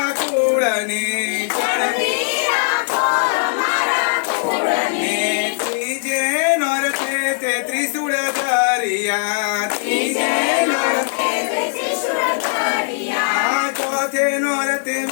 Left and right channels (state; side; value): silent; right; digital silence